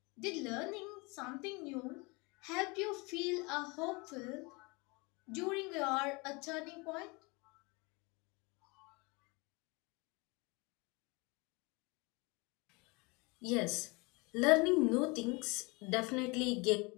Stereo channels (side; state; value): right; quieter; 27.5 dB